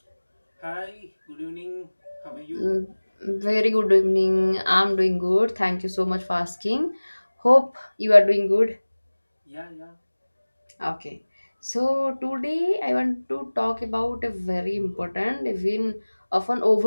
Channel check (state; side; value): inverted; both; correlation -1.00